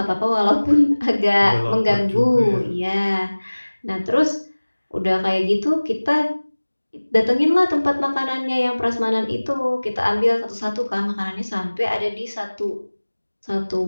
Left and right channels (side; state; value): both; inverted; correlation -1.00